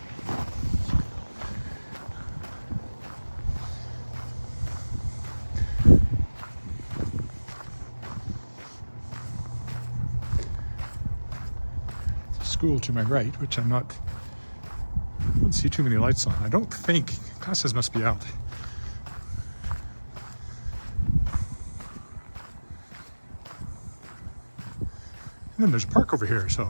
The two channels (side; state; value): both; inverted; correlation -1.00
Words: School to my right, which I don't see too many lights on. I don't think classes must be out. And then there's a park over here,